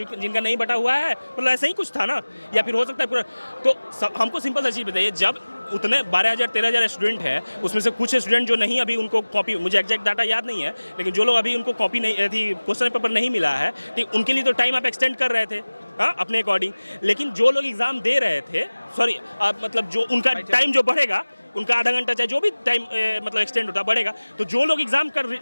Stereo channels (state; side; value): inverted; both; correlation -1.00